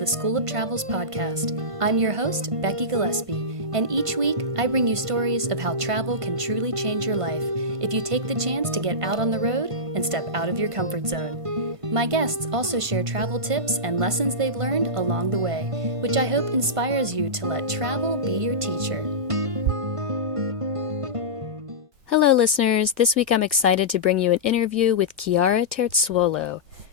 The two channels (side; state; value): left; late; 1.5 ms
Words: School of Travel's podcast. I'm your host, Becky Gillespie, and each week I bring you stories of how travel can truly change your life if you take the chance to get out on the road and step out of your comfort zone. My guests also share travel tips and lessons they've learned along the way, which I hope inspires you to let travel be your teacher. Hello, listeners. This week I'm excited to bring you an interview with Chiara Terzuolo,